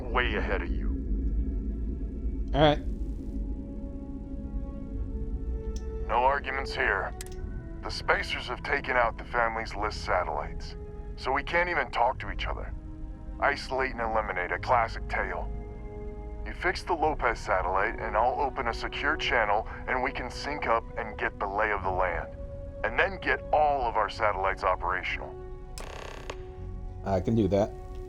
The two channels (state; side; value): identical; both; correlation 1.00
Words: way ahead of you. Alright. No arguments here. The Spacers have taken out the family's List satellites, so we can't even talk to each other. Isolate and eliminate, a classic tale. You fix the Lopez satellite, and I'll open a secure channel, and we can sync up and get the lay of the land. And then get all of our satellites operational. I can do that.